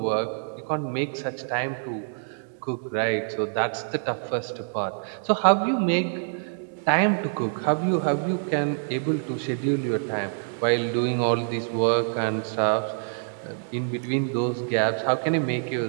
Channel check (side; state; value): left; silent; digital silence